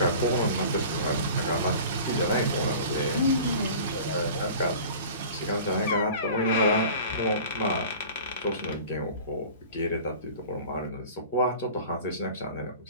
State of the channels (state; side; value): inverted; both; correlation -0.41